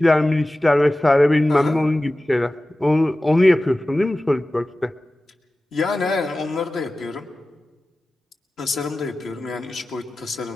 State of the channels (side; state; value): both; normal; correlation 0.96